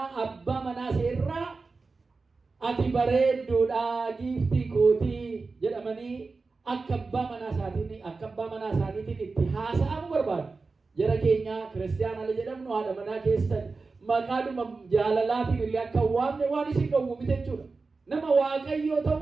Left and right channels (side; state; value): left; quieter; 4.1 dB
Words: abbaa manaa seerraa ati bareedduudha giiftii kootii jedhamanii akka abbaa manaa isaaniitiin itti haasa'amu barbaadu. Jara keenya kiristaanaa jedhamnu haadha manaa keessan maqaadhuma jaalalaatiin illee akka waamne waan isin dhowwu miti jechuudha. Nama waaqayyoo